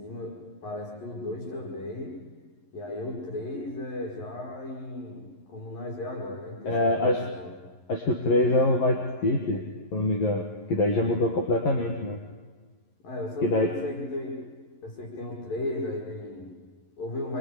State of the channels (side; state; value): right; late; 11 ms